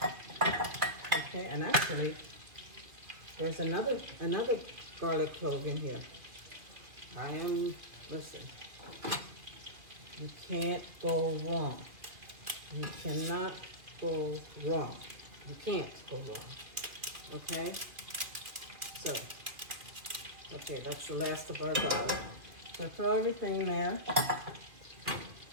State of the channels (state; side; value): late; left; 2.7 ms